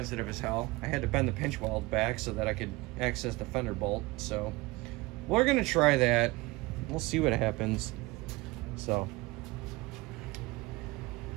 as hell. I had to bend the pinch weld back so that I could access the fender bolt. So we're gonna try that. We'll see what happens. So,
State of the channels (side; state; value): left; quieter; 21.8 dB